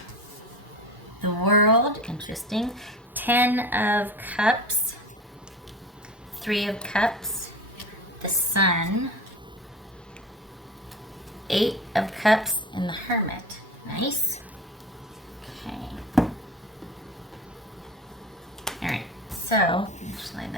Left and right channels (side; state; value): both; normal; correlation 0.34